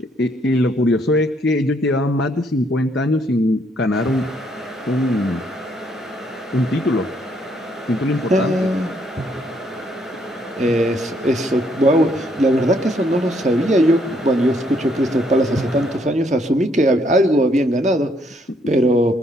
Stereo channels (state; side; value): normal; both; correlation 0.70